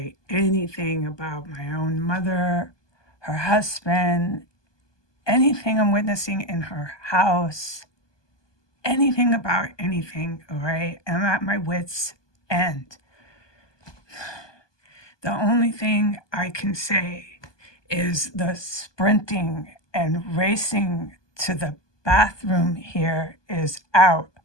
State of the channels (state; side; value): late; right; 1.2 ms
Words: anything about my own mother, her husband, anything I'm witnessing in her house, anything about anything, all right? I'm at my wits' end. The only thing I can say is the sprinting and racing to the bathroom here is out